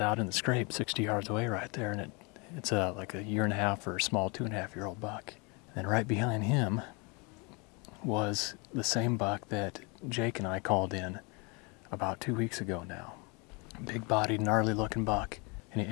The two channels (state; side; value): quieter; right; 30.4 dB